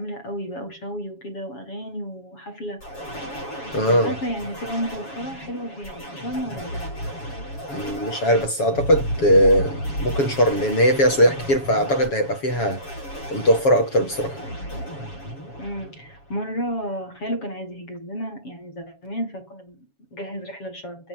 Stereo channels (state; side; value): late; right; 7.2 ms